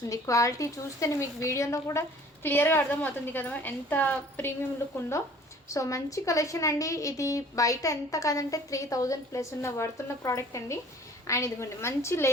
క్వాలిటీ చూస్తేనే మీకు వీడియోలో కూడా క్లియర్గా అర్థమవుతుంది కదా ఎంత ప్రీమియం లుక్ ఉందో సో మంచి కలెక్షన్ అండి ఇది బయట ఎంత కాదంటే 3000 ప్లస్ ఉన్న వర్తున్న ప్రోడక్ట్ అండి అండ్ ఇదిగోండి మంచి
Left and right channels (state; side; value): normal; both; correlation 0.51